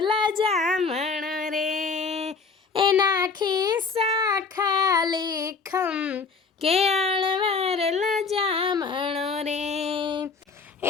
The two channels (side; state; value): right; quieter; 4.8 dB